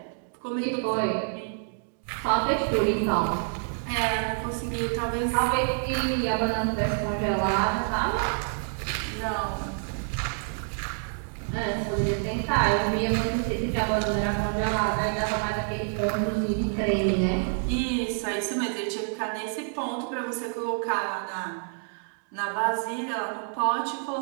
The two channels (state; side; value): silent; left; 57 dB below the other